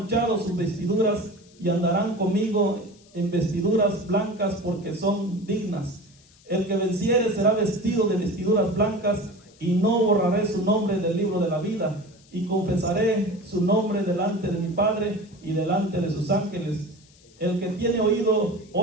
sus vestiduras, y andarán conmigo en vestiduras blancas, porque son dignas. El que venciere será vestido de vestiduras blancas, y no borraré su nombre del libro de la vida, y confesaré su nombre delante de mi Padre y delante de sus ángeles. El que tiene oído,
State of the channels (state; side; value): noise; left; hiss, 28 dB below the sound